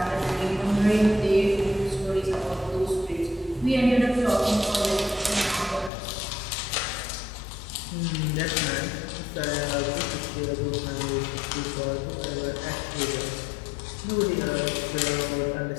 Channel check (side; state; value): right; drops out; at 5.9 s